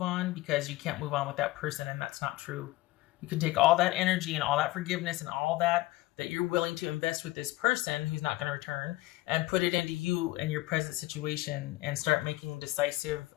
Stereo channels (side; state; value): right; quieter; 18.5 dB